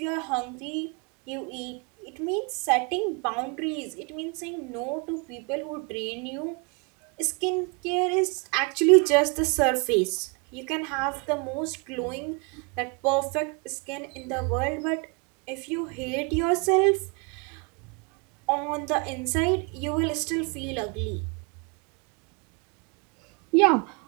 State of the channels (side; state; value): left; quieter; 33.2 dB